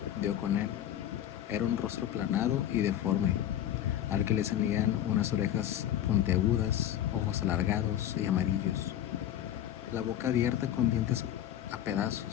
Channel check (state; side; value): quieter; right; 11.4 dB